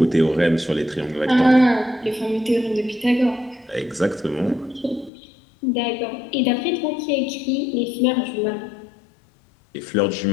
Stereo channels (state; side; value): drops out; right; at 5.1 s